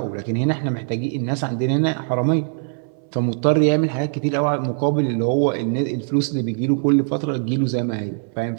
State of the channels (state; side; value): silent; left; 63 dB below the other